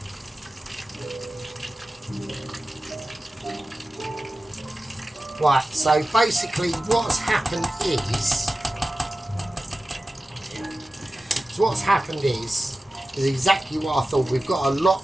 Right, so basically what's happened is exactly what I thought. We've got a lot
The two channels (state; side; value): normal; both; correlation 0.95